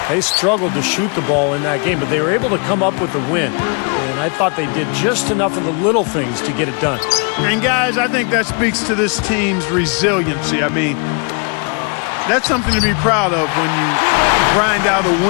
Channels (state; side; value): quieter; right; 35.9 dB